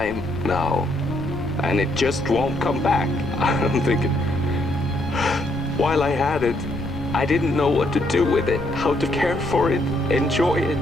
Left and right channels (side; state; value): left; noise; rumble, 11 dB below the sound